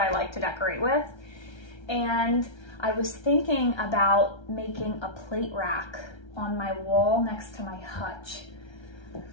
like to decorate with. And I was thinking about making a plate rack on my wall next to my hutch.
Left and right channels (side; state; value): right; late; 1.3 ms